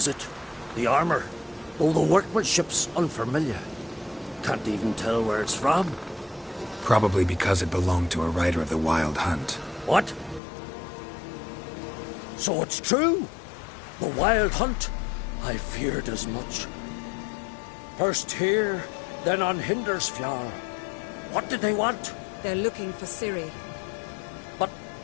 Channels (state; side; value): drops out; right; at 10.4 s